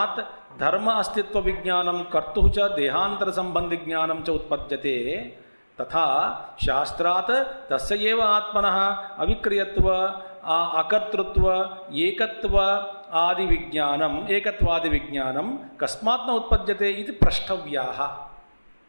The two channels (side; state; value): both; inverted; correlation -1.00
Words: धर्म अस्तित्व विज्ञानम कर्तुः च देहांतर संबंधी ज्ञानम च उत्पद्यते, तथा शास्त्रात् तस्य एव आत्मनः अविक्रियत्व अकर्तृत्व एकत्व आदि विज्ञानम एकत्वादि विज्ञानम कस्मात् न उत्पद्यते इति प्रष्टव्याः।